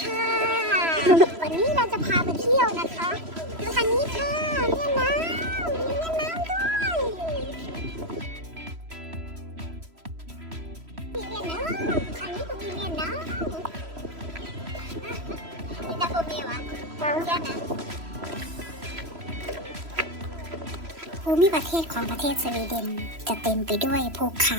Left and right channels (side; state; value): left; late; 3.0 ms